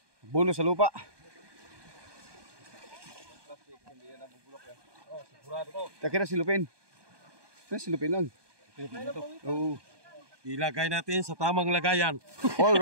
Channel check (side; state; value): left; late; 1.2 ms